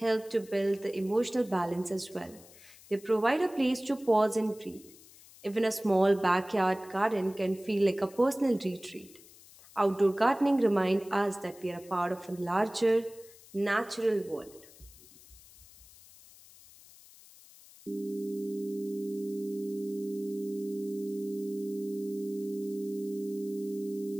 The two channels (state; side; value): noise; left; hiss, 22 dB below the sound